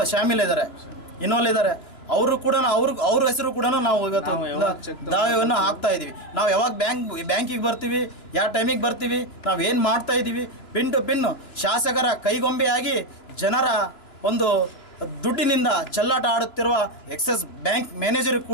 ಇನ್ವಾಲ್ವ್ ಇದ್ದಾರೆ. ಅವರು ಕೂಡ ಅವ್ರ ಹೆಸರು ಕೂಡ ನಾವು ಇವತ್ತು ದಾವೆಯನ್ನು ಹಾಕ್ತಾ ಇದ್ದೀವಿ. ನಾವು ಯಾವಾಗ ಬ್ಯಾಂಕಿಗೆ ಬರ್ತೀವಿ, ಯಾವ ಟೈಮಿಗೆ ಬರ್ತೀವಿ, ನಾವು ಏನು ಮಾಡ್ತಾ ಇದ್ದೀವಿ, ಪಿನ್ ಟು ಪಿನ್ ಶಾಸಕರ ಕೈಗೊಂಬೆಯಾಗಿ ಜನರ ಒಂದು ದುಡ್ಡಿನಿಂದ ಚೆಲ್ಲಾಟ ಆಡುತ್ತಿರುವ ಎಕ್ಸಿಸ್ ಬ್ಯಾಂಕ್ ಮ್ಯಾನೇಜರ್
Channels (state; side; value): late; right; 2.9 ms